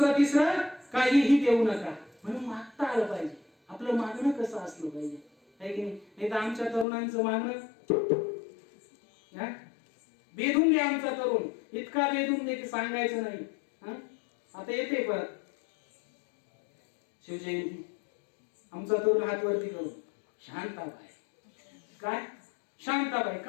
तिसरं काहीही देऊ नका. म्हणून मागता आलं पाहिजे. आपलं मागणं कसं असलं पाहिजे, आहे की नाही? तर आमच्या तरुणांचं मागणं बेधून द्या. आमचा तरुण इतका बेधून दे की सांगायचं नाही. आता येते परत शिवजयंती, आमचा तरुण हात वरती करून शांताबाई. काय शांताबाई?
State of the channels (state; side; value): drops out; right; at 6.9 s